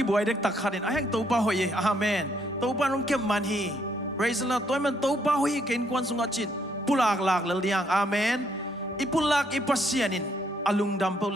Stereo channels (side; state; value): both; normal; correlation 0.71